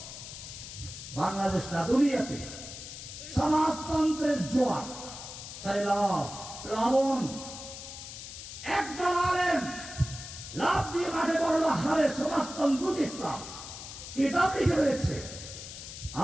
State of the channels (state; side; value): noise; left; hiss, 11 dB below the sound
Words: বাংলাদেশ না দুনিয়াতে সমাজতন্ত্রের জোয়ার, সাইলাব, প্লাবন। একদল আলেম লাভ দিয়ে মাঠে বলল, হারে সমাজতন্ত্র ইসলাম, কিতাব লিখে বেড়েছে,